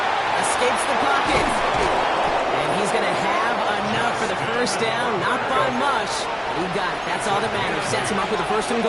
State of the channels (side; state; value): both; identical; correlation 1.00